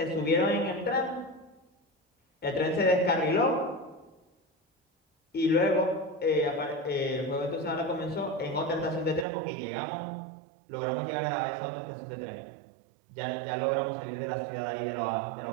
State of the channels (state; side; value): drops out; left; at 9.2 s